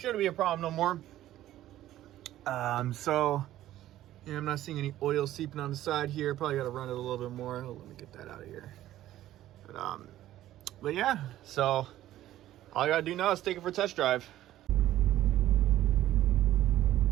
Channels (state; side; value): quieter; left; 13.7 dB